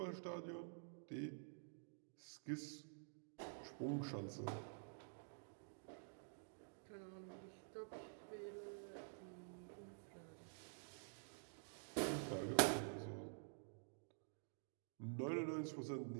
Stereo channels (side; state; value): left; silent; digital silence